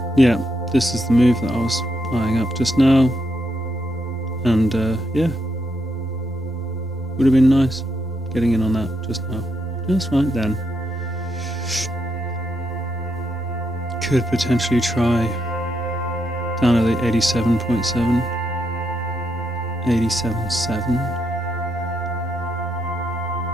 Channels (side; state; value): both; normal; correlation 0.79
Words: yeah, this is the move that I was eyeing up just now, and yeah, would have been nice getting in on that just now, just right then. Could potentially try down at the 87.7, 87.7.